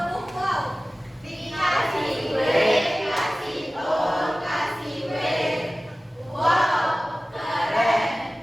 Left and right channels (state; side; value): normal; both; correlation 0.97